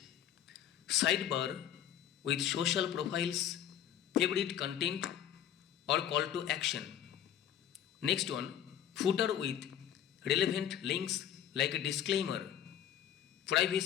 sidebar with social profiles, favorite content or call to action. Next one, footer with relevant links like a disclaimer,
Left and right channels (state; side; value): quieter; right; 10.4 dB